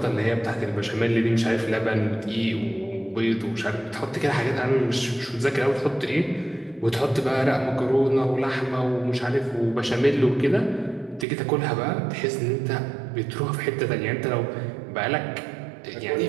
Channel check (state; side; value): drops out; left; at 11.2 s